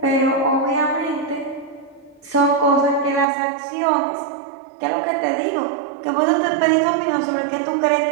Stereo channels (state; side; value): drops out; left; at 3.2 s